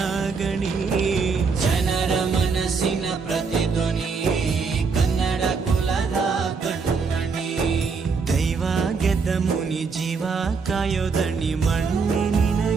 ಗಣಿ, ಜನರ ಮನಸ್ಸಿನ ಪ್ರತಿಧ್ವನಿ, ಕನ್ನಡ ಕುಲದ ಕಣ್ಮಣಿ. ದೈವ ಗೆದ್ದ ಮುನಿ ಜೀವ ಕಾಯೋದಣಿ, ಮಣ್ಣಿ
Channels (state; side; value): quieter; left; 5.0 dB